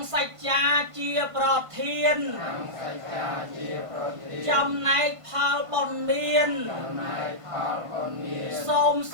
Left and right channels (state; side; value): late; left; 1.5 ms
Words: សច្ចាជាប្រធានចំណែកផលបុណ្យមានសូម